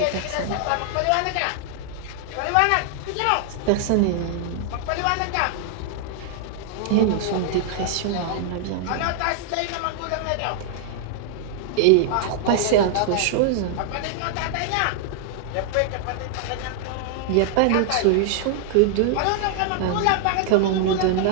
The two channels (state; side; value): different; both; correlation -0.01